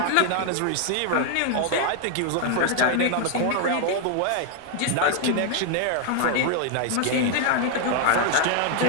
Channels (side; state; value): both; different; correlation 0.00